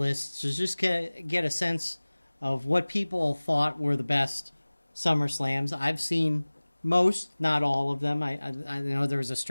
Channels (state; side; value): inverted; both; correlation -1.00